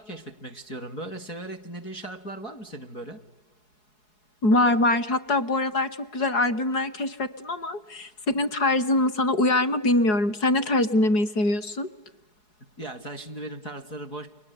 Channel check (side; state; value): right; late; 4.7 ms